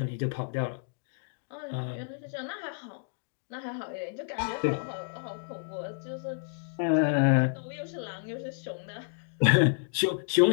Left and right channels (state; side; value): silent; right; digital silence